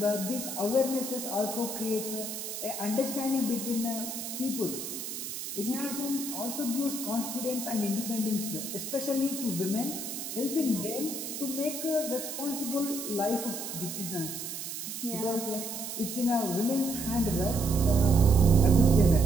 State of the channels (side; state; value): right; noise; hiss, 6 dB below the sound